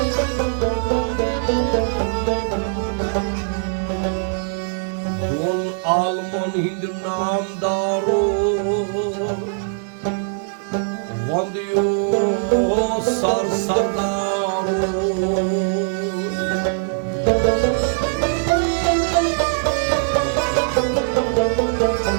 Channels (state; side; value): silent; left; digital silence